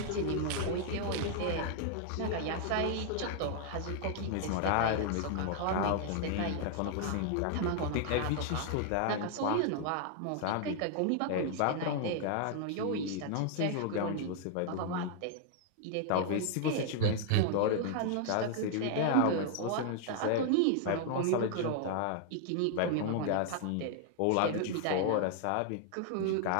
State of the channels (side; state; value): both; different; correlation 0.00